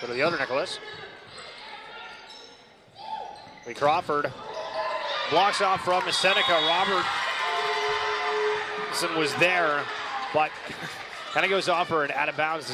to the other Nicholas. Lee Crawford blocks off from Seneca. Robertson was there, but kind of goes off her and out of bounds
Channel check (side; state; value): both; identical; correlation 1.00